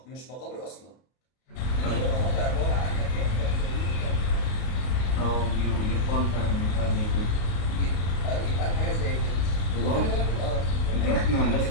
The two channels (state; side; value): late; right; 32 ms